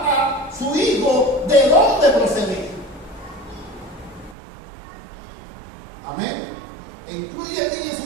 a su hijo de dónde procedía. Amén. E incluye en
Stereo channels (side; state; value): left; drops out; at 4.4 s